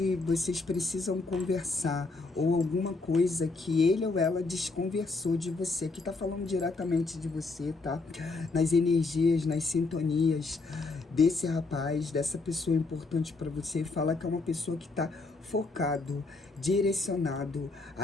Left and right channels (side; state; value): right; quieter; 3.7 dB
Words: vocês precisam conversar, ou alguma coisa que ele ou ela desconversou de você. Aqui tá falando diretamente de você, tá? Nas energias, nas sintonias desse rapaz, dessa pessoa importante para você. Fala que é uma pessoa que tá focado, direcionado